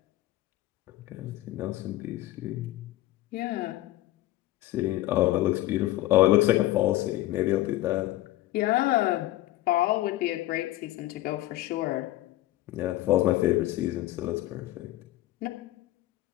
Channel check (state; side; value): quieter; right; 15.9 dB